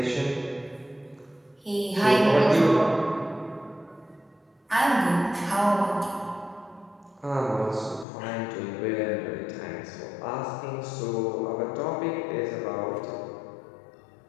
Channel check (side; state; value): right; drops out; at 8.1 s